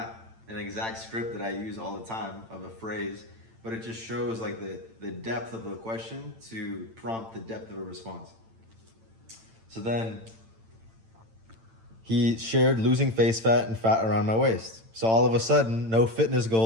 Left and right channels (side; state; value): left; late; 8.9 ms